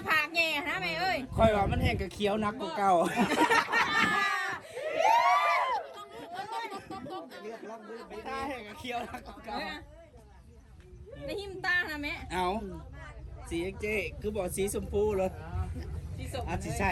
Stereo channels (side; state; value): both; identical; correlation 1.00